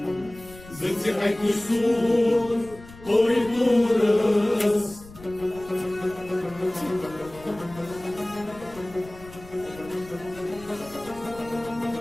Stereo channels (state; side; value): noise; left; rumble, 19 dB below the sound